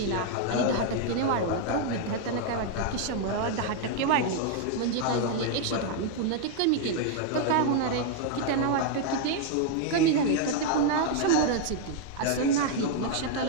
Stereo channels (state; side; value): different; both; correlation 0.00